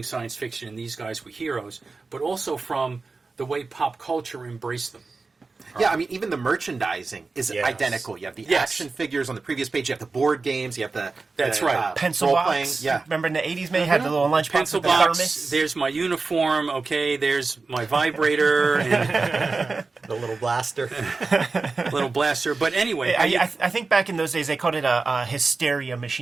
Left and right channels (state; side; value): quieter; left; 4.0 dB